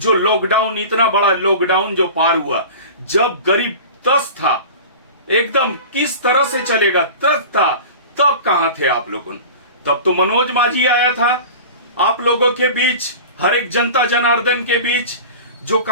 लॉकडाउन, इतना बड़ा लॉकडाउन जो पार हुआ, जब गरीब तस था, एकदम किस तरह से चलेगा त्रस्त था, तब कहां थे आप लोगों? तब तो मनोज माझी आया था आप लोगों के बीच, हर एक जनता जनार्दन के बीच। जो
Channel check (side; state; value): both; inverted; correlation -0.35